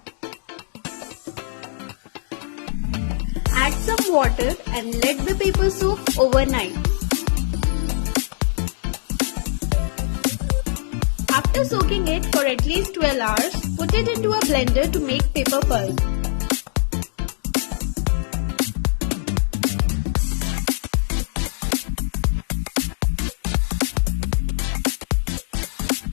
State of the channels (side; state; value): right; silent; digital silence